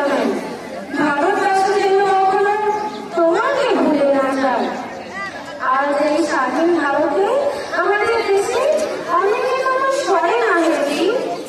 ভারতবাসী যেন কখনো তোমাকে ভুলে না যায়। আর এই স্বাধীন ভারতে আমাদের দেশে অনেকে তোমার স্মরণ আসে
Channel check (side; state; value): both; identical; correlation 1.00